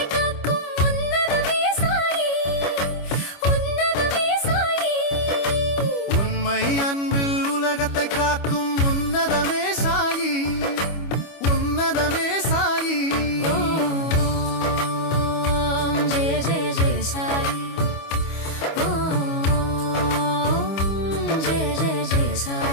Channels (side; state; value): right; late; 25 ms